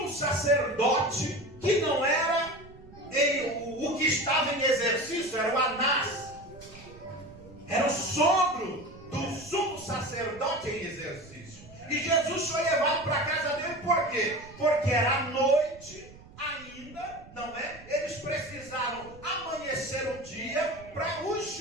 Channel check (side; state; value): right; noise; rumble, 20 dB below the sound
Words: sacerdote, que não era o que estava em exercício, era o Anás. Era o sogro do sumo sacerdote em exercício. E Jesus foi levado para a casa dele, por quê? Porque era noite ainda, não é? Eles precisaram amanhecer o dia para os